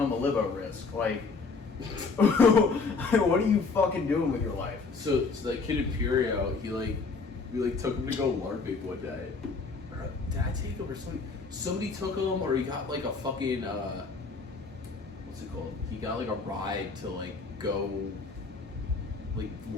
a libo risk? Like, what are you fucking doing with your life? So that kid Imperio, we took him to go LARPing one day. Or, did I take him or somebody? Somebody took him, or he got like a fucking what's it called? He got like a ride to like go like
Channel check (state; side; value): quieter; right; 4.3 dB